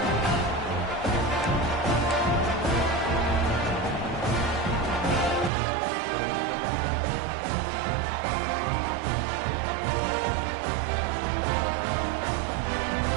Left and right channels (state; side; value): drops out; left; at 5.5 s